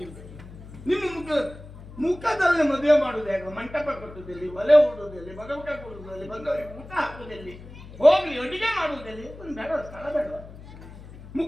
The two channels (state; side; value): noise; left; hum, 16 dB below the sound